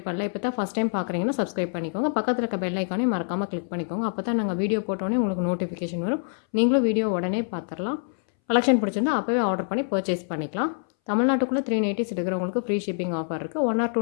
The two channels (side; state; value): right; silent; 61 dB below the other